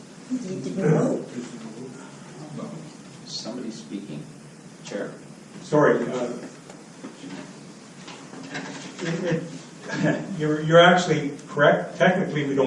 Need to vote. Somebody speaking? Chair? Sorry. You're actually correct. Technically, we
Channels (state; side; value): identical; both; correlation 1.00